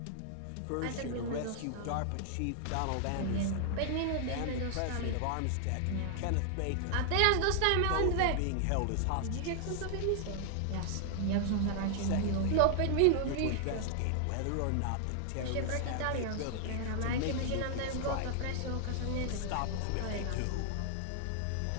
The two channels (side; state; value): both; different; correlation 0.00